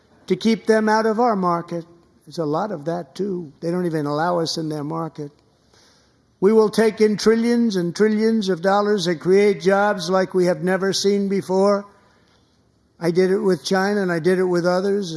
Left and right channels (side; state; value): both; identical; correlation 1.00